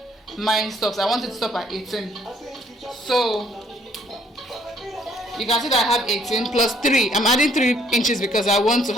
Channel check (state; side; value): normal; both; correlation 0.63